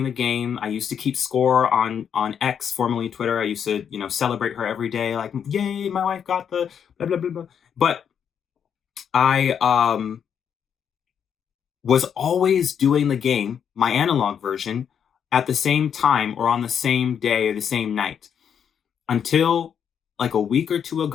the game. I used to keep score on X, formerly Twitter. I used to, celebrate her every day, like, yay, my wife got the blah, blah, blah, blah. But I was always doing the game, my analog version, at the same time or on the same day or the same night. Until like a week or two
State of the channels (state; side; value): quieter; right; 8.0 dB